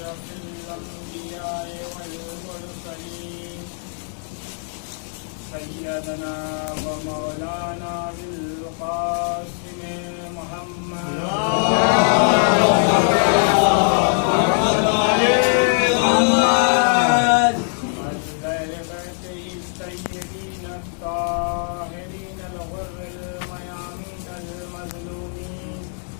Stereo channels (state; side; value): silent; right; 57 dB below the other